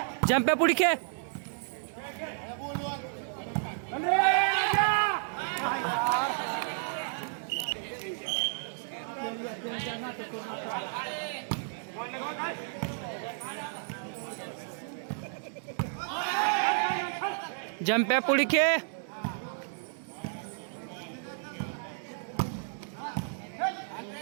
जंप्या पुढे खेळ. जंप्या पुढे खेळ.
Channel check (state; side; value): silent; left; digital silence